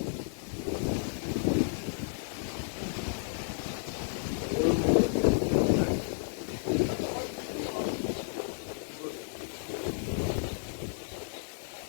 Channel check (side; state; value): right; silent; digital silence